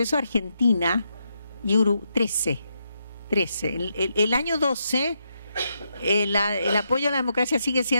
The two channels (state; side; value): inverted; both; correlation -0.81